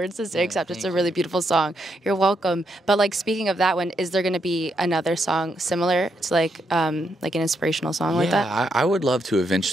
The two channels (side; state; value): both; normal; correlation 0.79